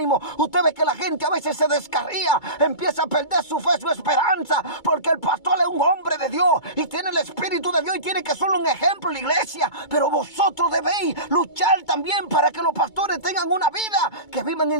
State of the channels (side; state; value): right; late; 2.2 ms